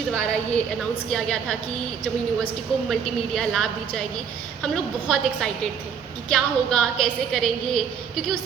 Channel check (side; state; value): left; quieter; 7.1 dB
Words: द्वारा ये अनाउंस किया गया था कि जम्मू यूनिवर्सिटी को मल्टीमीडिया लैब दी जाएगी। हम लोग बहुत एक्साइटेड थे कि क्या होगा, कैसे करेंगे, क्योंकि